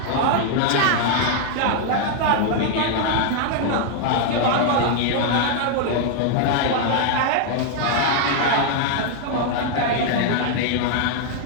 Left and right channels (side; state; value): both; different; correlation 0.00